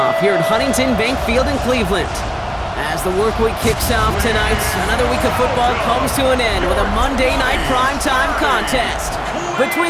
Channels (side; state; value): both; identical; correlation 1.00